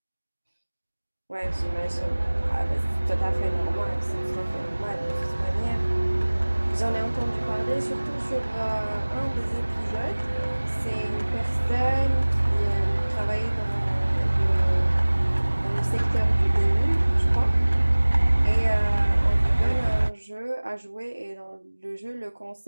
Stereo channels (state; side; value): inverted; both; correlation -1.00